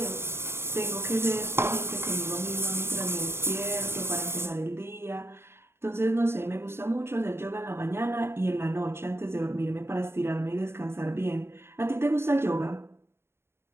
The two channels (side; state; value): left; late; 0.12 ms